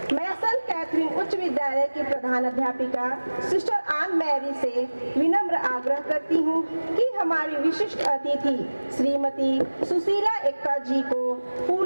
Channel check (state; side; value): inverted; both; correlation -1.00